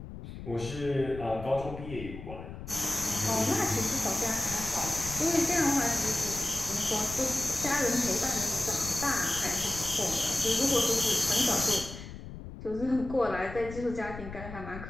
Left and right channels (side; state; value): left; noise; rumble, 11 dB below the sound